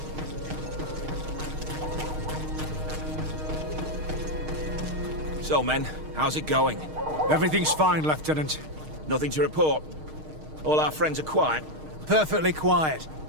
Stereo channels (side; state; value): left; late; 6.5 ms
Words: So, men, how's it going? Everything's fine, Lieutenant. Nothing to report? All our friends are quiet? Perfectly quiet.